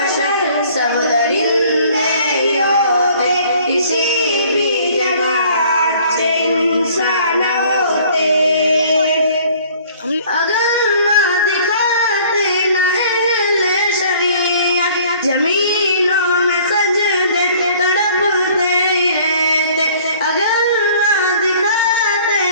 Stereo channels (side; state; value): both; inverted; correlation -0.54